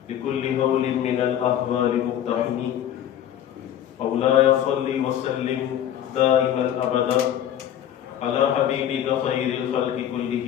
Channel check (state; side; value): quieter; right; 10.6 dB